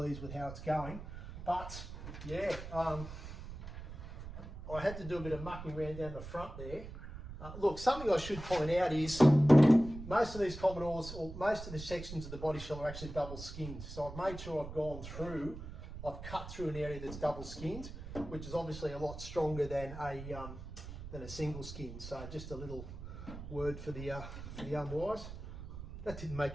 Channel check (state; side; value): noise; right; rumble, 10 dB below the sound